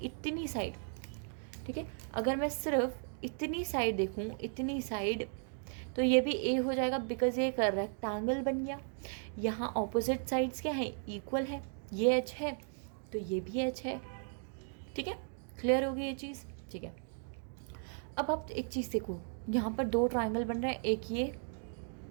साइड, ठीक है, अगर मैं सिर्फ इतनी साइड देखूँ, इतनी साइड, तो ये भी ए हो जाएगा, बिकॉज ये एक रेक्टेंगल बन गया। यहाँ ऑपोजिट साइड्स क्या है, इक्वल है, ये एच है तो ये भी एच है। ठीक है, क्लियर होगी ये चीज़, ठीक है। अब आप एक चीज़ देखो, यहाँ पर दो ट्रायंगल बन रहे हैं, एक ये,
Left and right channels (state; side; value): silent; left; 54 dB below the other